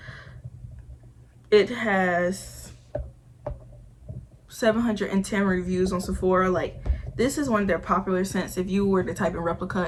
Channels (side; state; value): both; identical; correlation 1.00